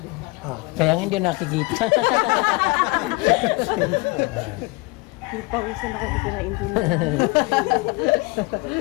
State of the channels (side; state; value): right; quieter; 24.9 dB